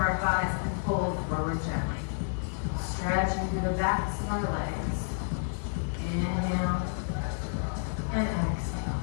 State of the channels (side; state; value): right; silent; 56 dB below the other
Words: our thighs and fold forward gently. Stretching through the backs of our legs. Inhale and exhale.